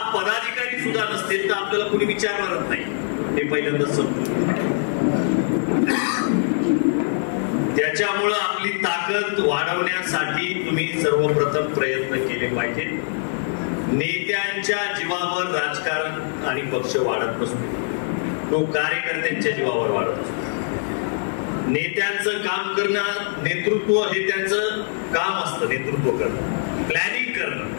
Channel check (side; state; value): right; silent; digital silence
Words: पदाधिकारी सुद्धा नसतील तर आपल्याला कोणी विचारणारच नाही, हे पहिल्यांदा समजून. त्याच्यामुळं आपली ताकद वाढवण्यासाठी तुम्ही सर्वप्रथम प्रयत्न केले पाहिजे. नेत्यांच्या जीवावर राजकारण आणि पक्ष वाढत नसतो, तो कार्यकर्त्यांच्या जीवावर वाढत असतो. नेत्यांचं काम करणं, नेतृत्व हे त्यांचं काम असतं, नेतृत्व करणं, प्लॅनिंग करणं.